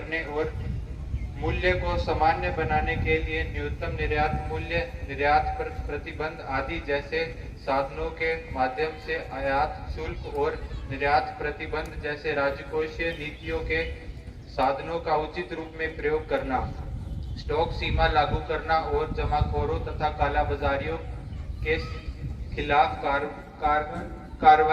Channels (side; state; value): both; identical; correlation 1.00